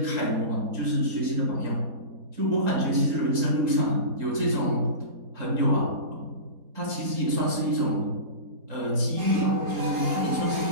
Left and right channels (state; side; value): late; left; 4.2 ms